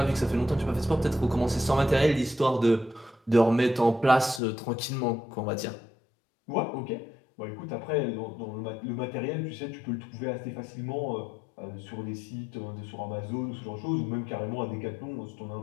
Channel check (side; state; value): right; drops out; at 4.4 s